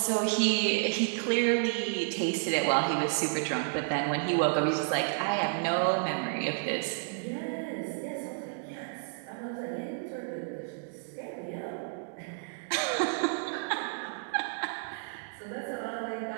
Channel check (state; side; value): silent; left; digital silence